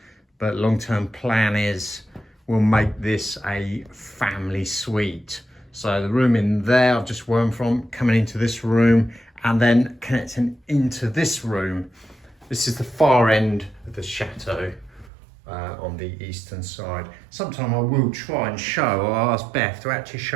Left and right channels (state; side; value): drops out; left; at 15.1 s